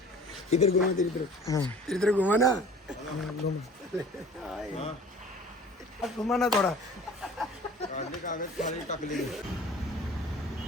इधर घुमा, इधर घुमा ना. घुमा ना थोडा.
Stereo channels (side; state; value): both; normal; correlation 0.46